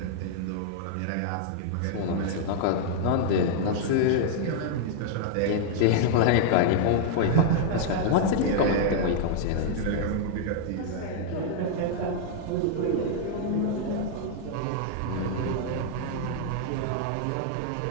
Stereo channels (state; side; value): different; both; correlation -0.01